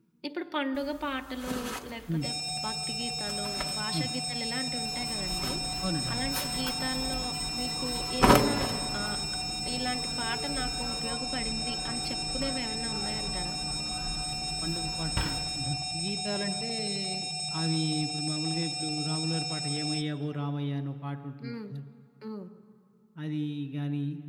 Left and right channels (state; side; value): identical; both; correlation 1.00